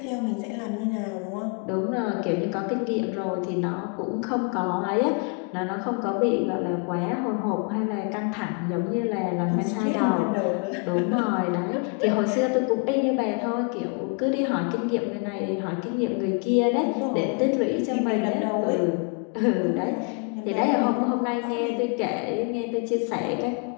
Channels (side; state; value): right; quieter; 36.0 dB